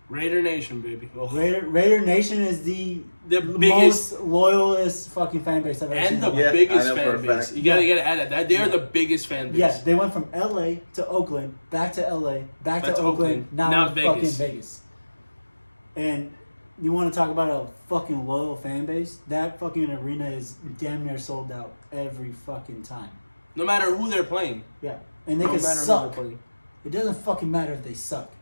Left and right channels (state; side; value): inverted; both; correlation -1.00